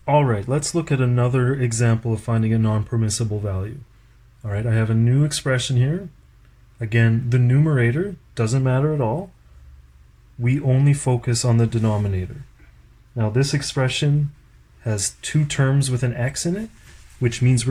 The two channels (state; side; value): identical; both; correlation 1.00